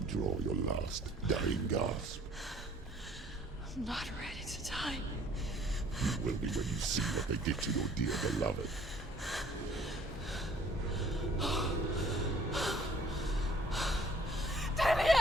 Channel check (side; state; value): both; normal; correlation 0.58